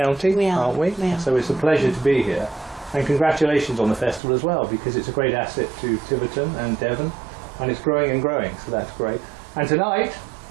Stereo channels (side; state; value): left; drops out; at 4.2 s